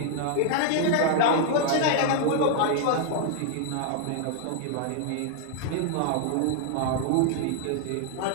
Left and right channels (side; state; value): both; different; correlation 0.00